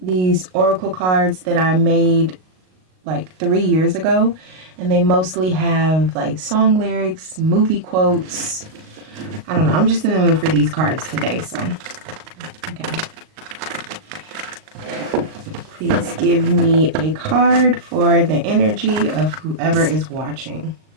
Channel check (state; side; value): late; left; 38 ms